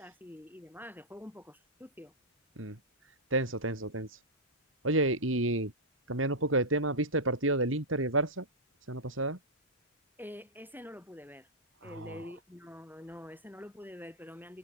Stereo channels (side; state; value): both; normal; correlation -0.12